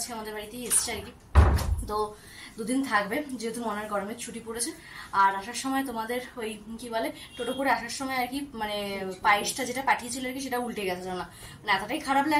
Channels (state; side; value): identical; both; correlation 1.00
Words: আমাদের বাড়িতেই এসছে আর কি। তো 2 দিন থাকবে, যেহেতু মনের গরমের ছুটি পড়েছে। আর আসার সময় তোমাদের ওই কি বলে টোটো করে আসার সময় আর কি মানে পায়েসটা যেটা পাঠিয়েছিল আর কি সেটা উল্টে গেছে না, মানে এতটাই খারাপ